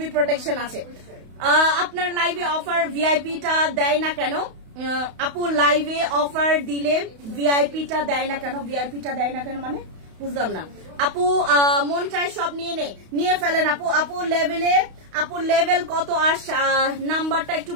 প্রোটেকশন আছে। আপনার লাইভে অফার ভিআইপিটা দেয় না কেন? আপু লাইভে অফার দিলে ভিআইপিটা দেয় না কেন? ভিআইপিটা দেয় না কেন মানে বুঝলাম না। আপু মন চায় সব নিয়ে ফেলেন আপু লেভেল কত? আর নাম্বারটা একটু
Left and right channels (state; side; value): late; left; 32 ms